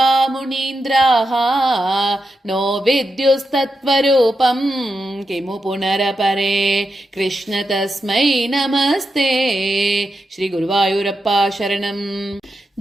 मुनीन्द्राः नो विद्युस्तत्त्वरूपं किमु पुनरपरे कृष्ण तस्मै नमस्ते। श्री गुरुवायूरप्पा शरणम्।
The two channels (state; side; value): normal; both; correlation 0.87